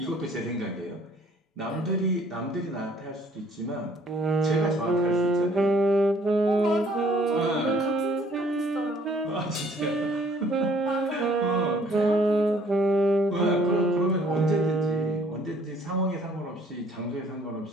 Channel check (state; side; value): normal; both; correlation 0.59